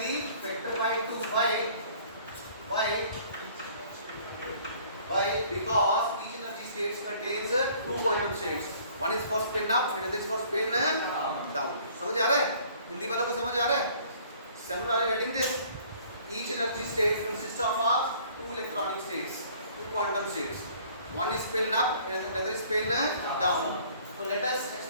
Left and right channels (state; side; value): inverted; both; correlation -0.56